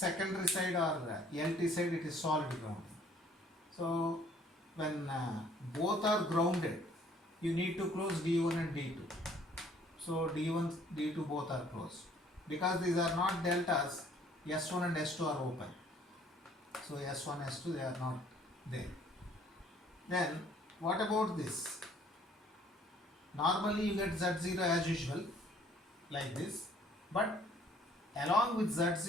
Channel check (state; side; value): normal; both; correlation 0.59